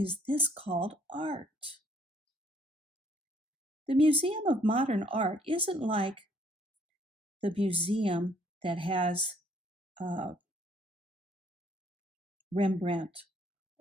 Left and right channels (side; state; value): both; normal; correlation 0.64